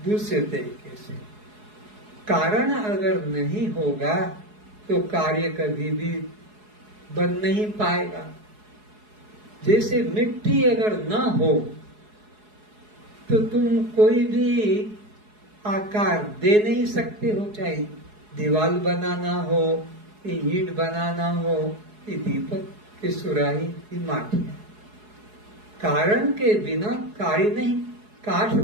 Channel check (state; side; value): late; left; 4.7 ms